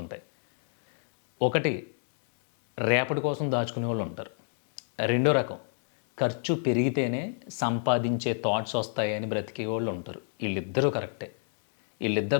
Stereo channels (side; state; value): right; silent; digital silence